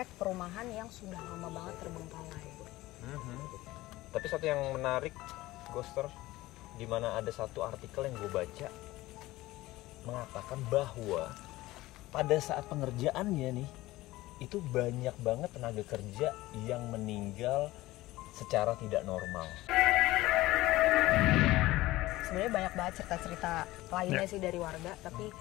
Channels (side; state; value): right; quieter; 18.0 dB